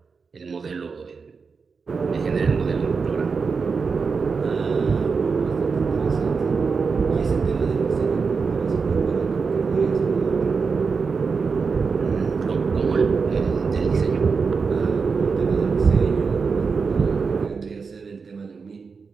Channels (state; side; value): quieter; left; 5.1 dB